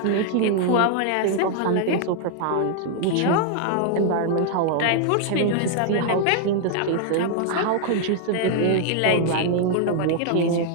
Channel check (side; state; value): both; different; correlation 0.00